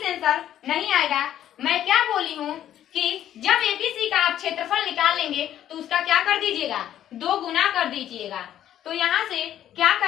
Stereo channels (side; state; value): right; quieter; 11.3 dB